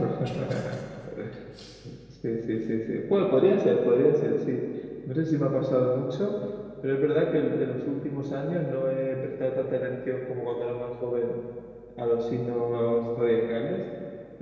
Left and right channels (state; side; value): identical; both; correlation 1.00